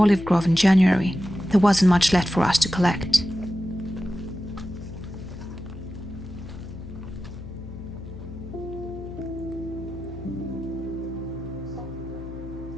grove in January, there wasn't much left for us to collect.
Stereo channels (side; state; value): left; noise; hum, 12 dB below the sound